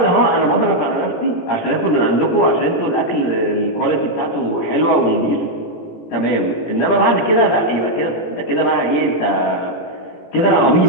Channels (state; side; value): late; right; 17 ms